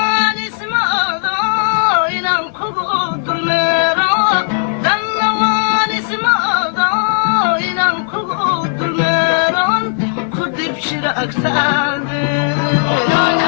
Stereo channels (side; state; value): right; silent; digital silence